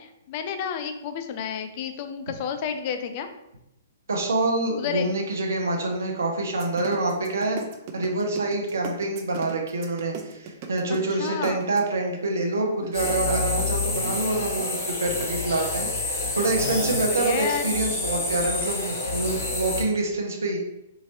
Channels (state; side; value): inverted; both; correlation -0.46